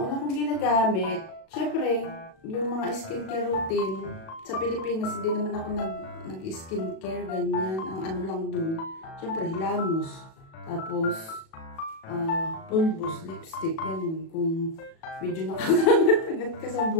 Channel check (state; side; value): late; right; 37 ms